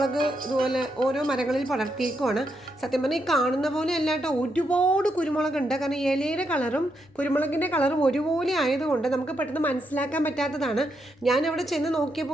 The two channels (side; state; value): both; normal; correlation 0.81